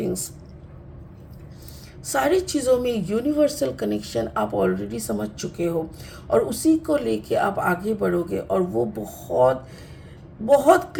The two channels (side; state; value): both; identical; correlation 1.00